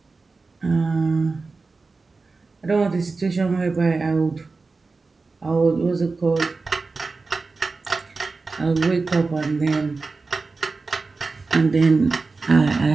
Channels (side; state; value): left; quieter; 4.0 dB